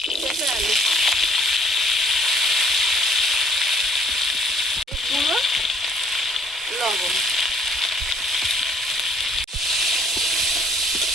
পেঁপে আলু, গুঁড়ো, লবণ।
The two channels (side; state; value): both; normal; correlation 0.59